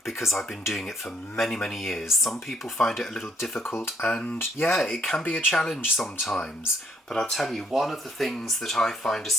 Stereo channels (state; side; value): normal; both; correlation 0.68